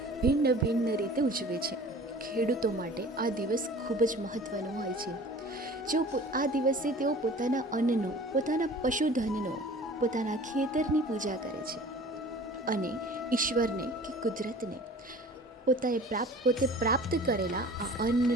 ભિન્ન ભિન્ન રીતે ઉજવે છે. ખેડૂતો માટે આ દિવસ ખૂબ જ મહત્ત્વનો હોય છે. જો આ દિવસે તેઓ પોતાના અન્નનો, પોતાના પશુધનનો, પોતાના ખેતરની પૂજા કરે છે અને ઈશ્વરને કે કુદરતને પોતે પ્રાપ્ત કરેલા આ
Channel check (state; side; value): normal; both; correlation 0.44